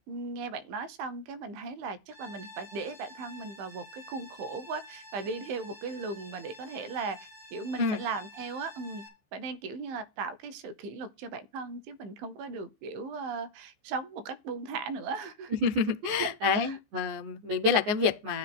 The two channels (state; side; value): late; left; 14 ms